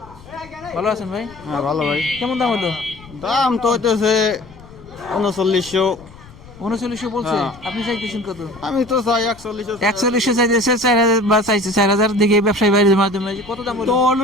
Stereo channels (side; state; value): left; noise; rumble, 21 dB below the sound